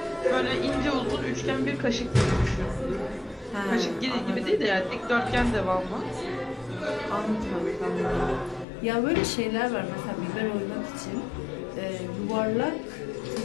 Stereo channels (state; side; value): drops out; right; at 8.7 s